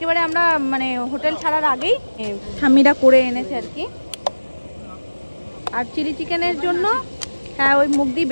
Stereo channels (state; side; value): inverted; both; correlation -1.00